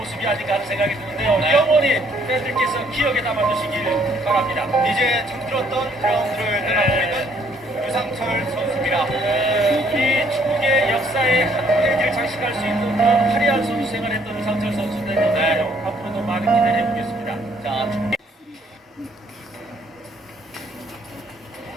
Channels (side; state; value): both; normal; correlation 0.65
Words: 아닌가 하는 생각이 드는데요. 영원히 팬들께서 기억에 담아두시길 바랍니다. 이제 잠들었던 그라운드를 떠나고 있는 유상철 선수입니다. 우리 축구의 역사의 한 페이지를 장식할 수 있는 그런 화려한 선수 생활했던 유상철 선수인데 앞으로도 많은 기대를 해보겠습니다. 자,